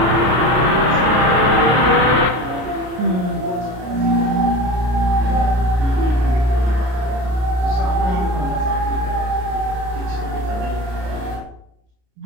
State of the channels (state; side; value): late; left; 33 ms